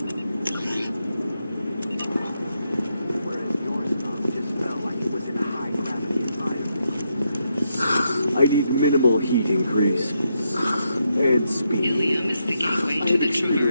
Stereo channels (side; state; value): both; inverted; correlation -0.81